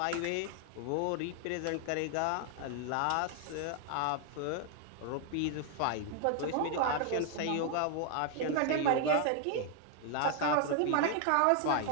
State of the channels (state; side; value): different; both; correlation 0.00